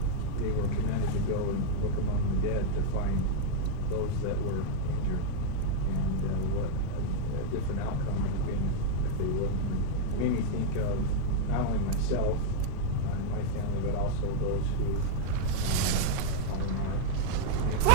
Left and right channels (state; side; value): different; both; correlation -0.01